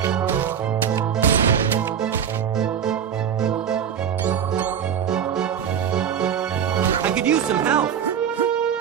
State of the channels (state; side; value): quieter; left; 8.3 dB